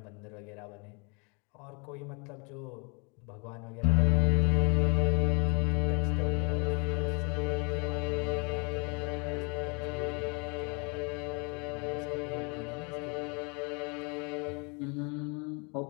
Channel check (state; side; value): quieter; right; 32.8 dB